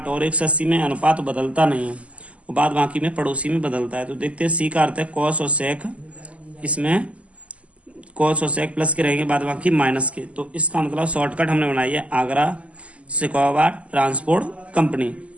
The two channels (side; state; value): left; late; 0.064 ms